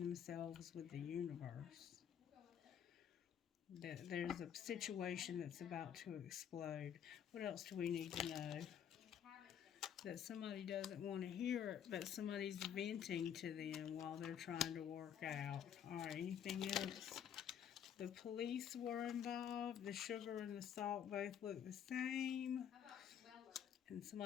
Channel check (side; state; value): right; quieter; 8.9 dB